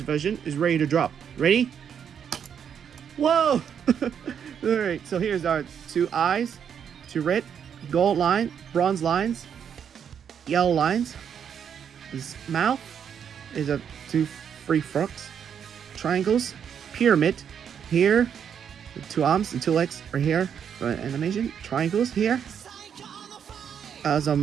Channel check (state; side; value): quieter; left; 8.0 dB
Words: is ready to drop. Ready? Whoa! Alright, so here's our two eyes, two red, gold line, bronze lines, yellow lines. His mouth is a two free frogs, triangles, pyramid. Here 2 arms and 2 legs right here. Animation triangles here. That's